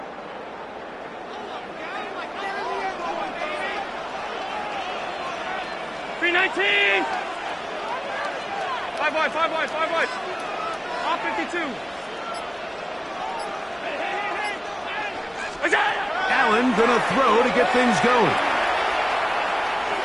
Five wide. Off 52. Allen gonna throw to get things going.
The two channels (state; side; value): identical; both; correlation 1.00